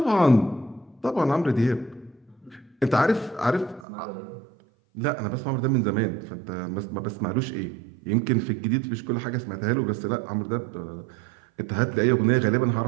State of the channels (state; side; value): drops out; left; at 3.8 s